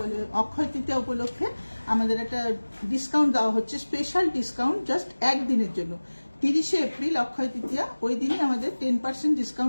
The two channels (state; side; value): inverted; both; correlation -1.00